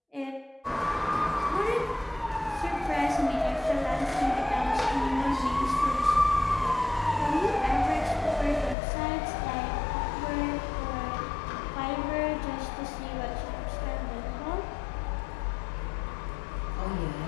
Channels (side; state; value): right; drops out; at 8.8 s